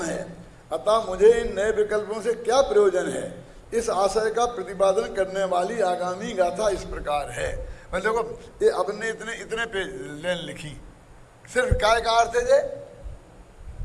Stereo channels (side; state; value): both; identical; correlation 1.00